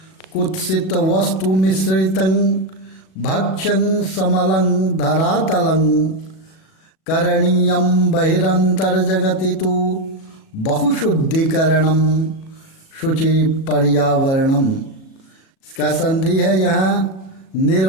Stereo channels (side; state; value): right; late; 37 ms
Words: कुत्सित वस्तु मिश्रितं भक्ष्यं समलं धरातलं करणीयं बहिरंतर्जगति तु बहुशुद्धिकरणम शुचि पर्यावरणम। इसका संधि है यहाँ